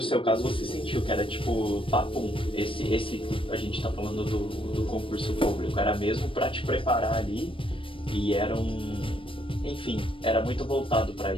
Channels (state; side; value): late; right; 0.25 ms